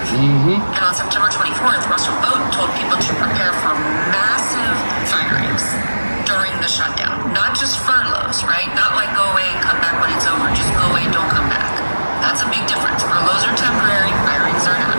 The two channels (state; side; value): inverted; both; correlation -1.00